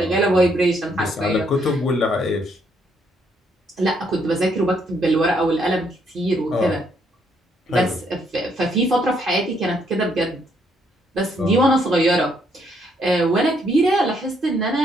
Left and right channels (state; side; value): normal; both; correlation 0.72